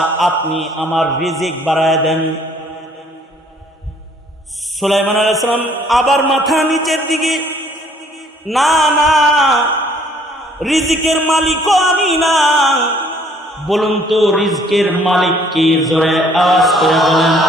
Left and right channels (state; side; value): normal; both; correlation 0.60